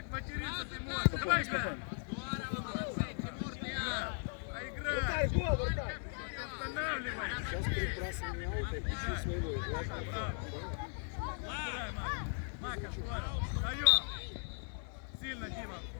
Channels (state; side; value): silent; right; 52 dB below the other